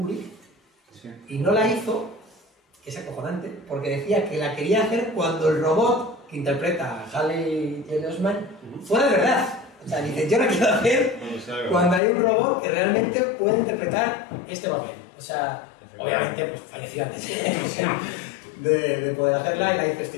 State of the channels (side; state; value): right; drops out; at 12.0 s